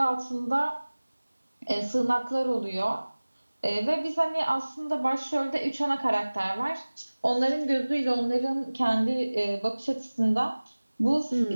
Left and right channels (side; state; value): both; inverted; correlation -1.00